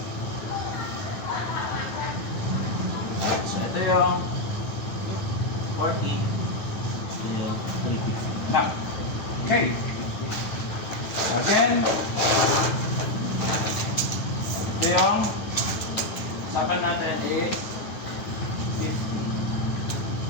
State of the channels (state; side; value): late; right; 10 ms